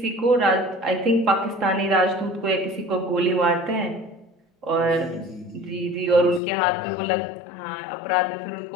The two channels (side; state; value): right; drops out; at 6.4 s